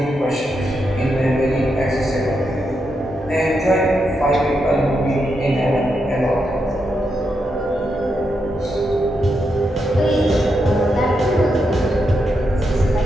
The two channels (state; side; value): normal; both; correlation 0.83